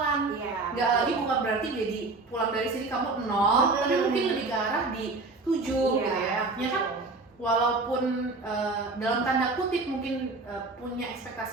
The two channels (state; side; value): quieter; left; 3.6 dB